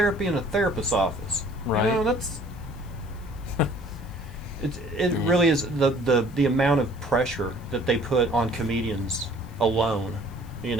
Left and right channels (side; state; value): left; noise; hiss, 28 dB below the sound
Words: in a therapist's office. Right. You know, that's... It really is the amount of pressure that they put on comedians alone, you